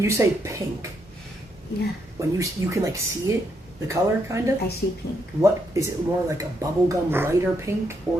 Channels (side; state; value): both; normal; correlation 0.77